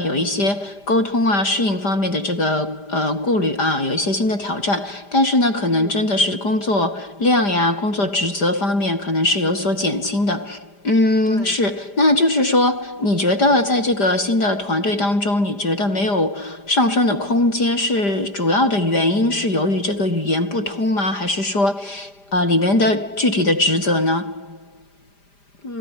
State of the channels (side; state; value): right; late; 5.0 ms